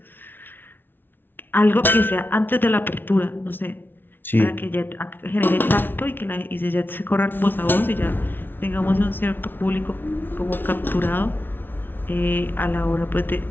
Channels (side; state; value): right; late; 0.098 ms